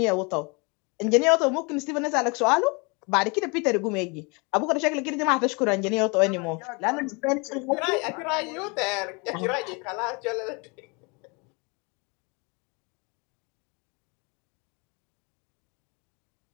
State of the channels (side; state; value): right; quieter; 30.4 dB